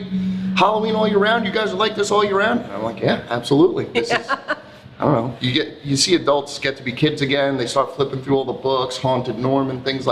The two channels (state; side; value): identical; both; correlation 1.00